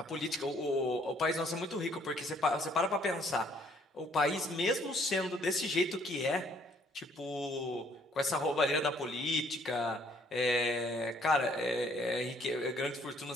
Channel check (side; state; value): both; normal; correlation 0.63